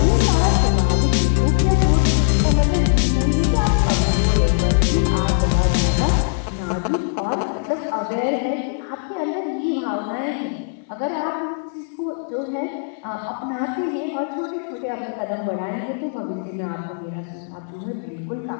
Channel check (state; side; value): silent; right; digital silence